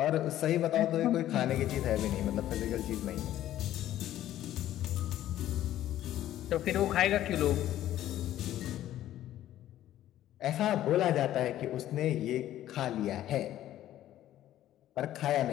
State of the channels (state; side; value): quieter; right; 13.0 dB